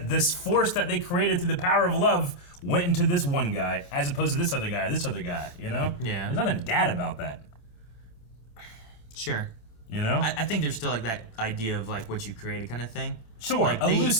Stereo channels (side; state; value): right; late; 27 ms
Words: this force that they created through the power of love went into this one guy as opposed to this other guy. You know. Yeah. There's nothing dad about that. Sure. You know. I think there's still like that idea of like what you created kind of thing. Sure, like a